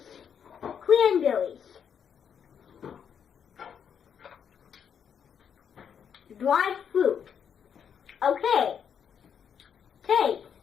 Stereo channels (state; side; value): quieter; right; 7.8 dB